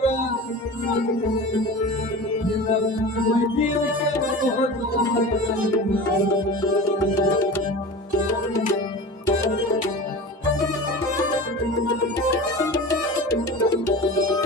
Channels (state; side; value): normal; both; correlation 0.33